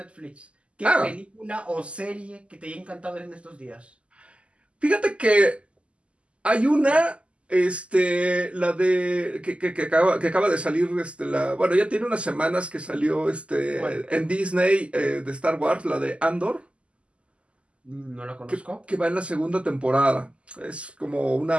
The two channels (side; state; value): left; late; 0.056 ms